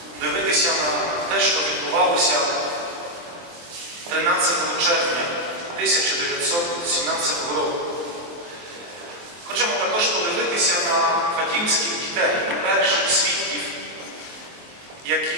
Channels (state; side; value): late; left; 23 ms